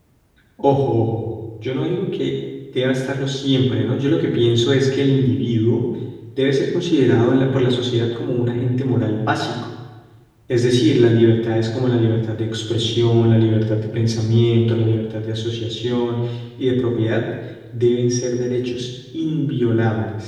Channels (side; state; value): both; identical; correlation 1.00